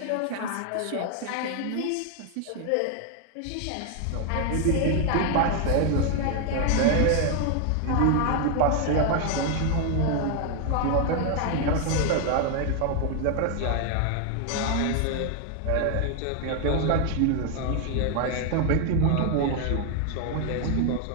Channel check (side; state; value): both; different; correlation 0.00